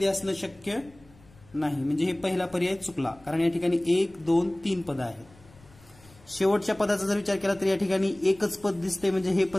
असणं शक्य नाही, म्हणजे हे पहिला पर्याय चुकला, कारण या ठिकाणी 1, 2, 3 पद आहेत. शेवटच्या पदाचा जर विचार केला तर या ठिकाणी एकच पद दिसते, म्हणजे हे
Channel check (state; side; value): noise; left; rumble, 26 dB below the sound